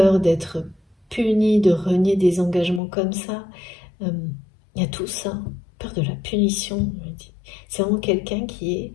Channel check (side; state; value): right; drops out; at 2.8 s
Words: d'être puni, de renier des engagements comme ça, il y a tout ça, peur de la punition. C'est vraiment quelqu'un qui